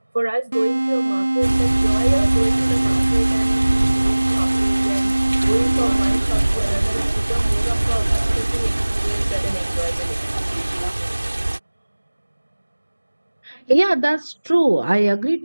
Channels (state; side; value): inverted; both; correlation -1.00